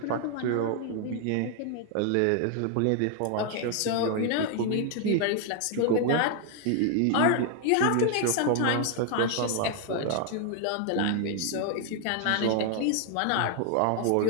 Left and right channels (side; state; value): both; different; correlation 0.00